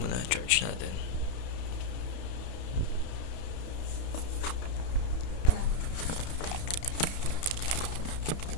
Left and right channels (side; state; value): right; late; 31 ms